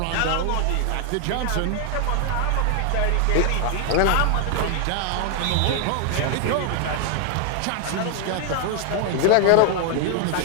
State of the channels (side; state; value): both; different; correlation 0.00